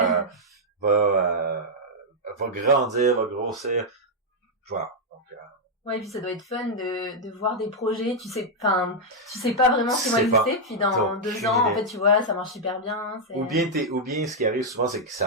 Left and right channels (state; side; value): normal; both; correlation -0.03